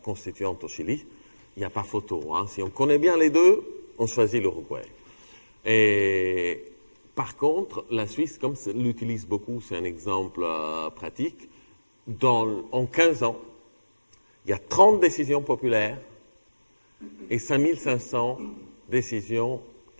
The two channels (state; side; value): inverted; both; correlation -1.00